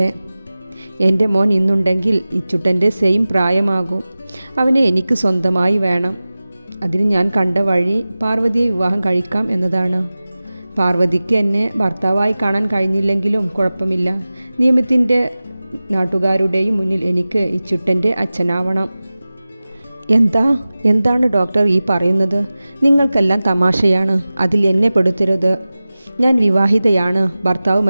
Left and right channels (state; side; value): inverted; both; correlation -0.97